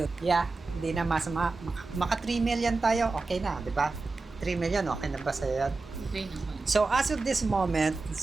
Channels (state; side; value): quieter; left; 3.7 dB